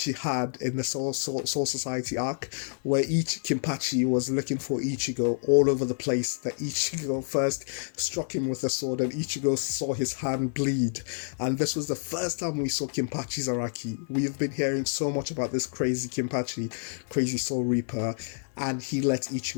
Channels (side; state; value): right; silent; 59 dB below the other